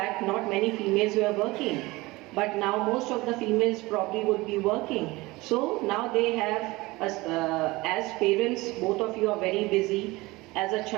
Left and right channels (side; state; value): left; quieter; 21.5 dB